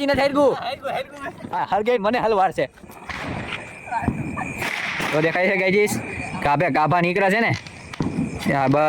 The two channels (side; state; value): both; identical; correlation 1.00